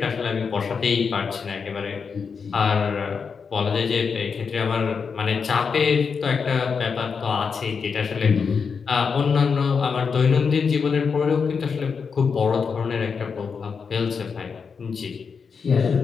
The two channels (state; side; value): quieter; right; 5.7 dB